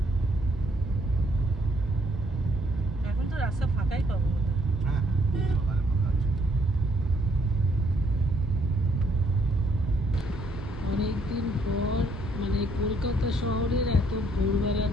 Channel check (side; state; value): both; normal; correlation 0.68